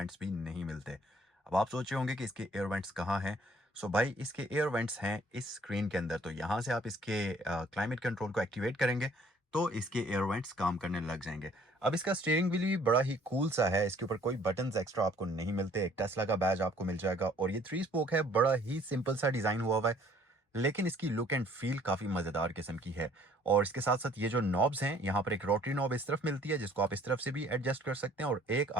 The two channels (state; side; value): normal; both; correlation 0.59